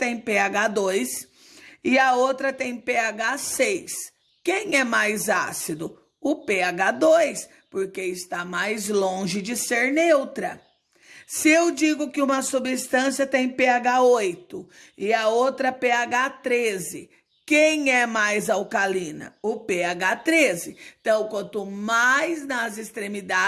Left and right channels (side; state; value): both; identical; correlation 1.00